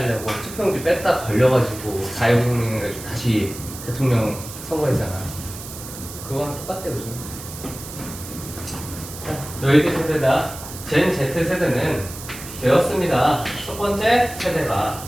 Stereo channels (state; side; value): noise; right; hiss, 12 dB below the sound